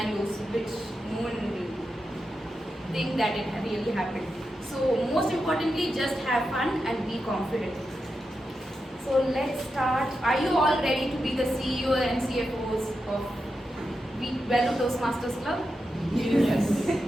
which no one will think that it really happened. So most importantly, just have fun and be confident. So let's start. Are you all ready to be the CEO and CFOs of Vellore Toastmasters Club? Yes.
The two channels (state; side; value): normal; both; correlation 0.88